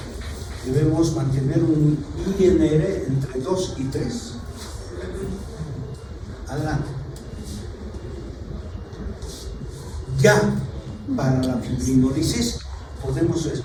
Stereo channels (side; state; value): both; identical; correlation 1.00